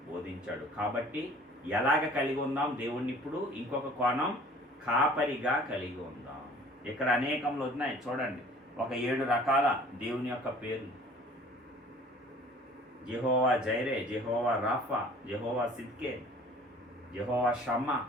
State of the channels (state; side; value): normal; both; correlation 0.50